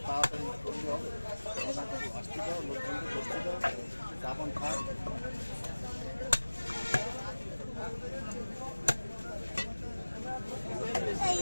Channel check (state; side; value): inverted; both; correlation -1.00